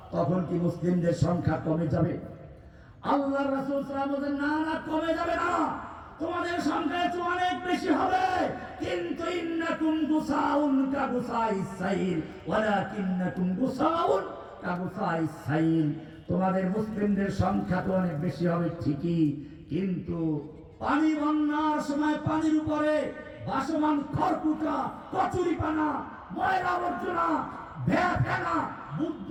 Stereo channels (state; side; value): identical; both; correlation 1.00